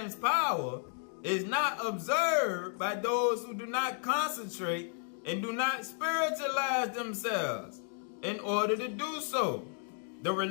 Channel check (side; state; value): right; silent; 56 dB below the other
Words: power, is not observed by those who do not concentrate and do not spiritualize themselves in order to do so. The